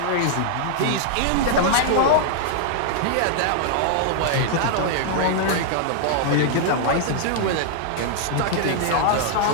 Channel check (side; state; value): both; different; correlation 0.00